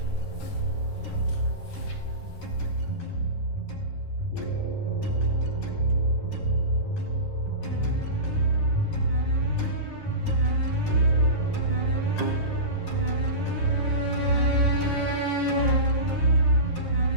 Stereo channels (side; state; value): right; late; 11 ms